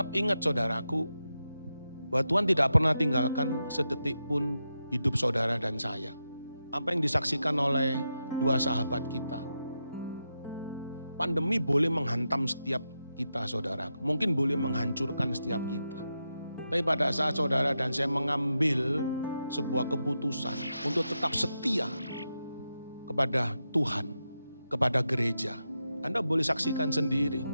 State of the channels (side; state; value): both; inverted; correlation -0.87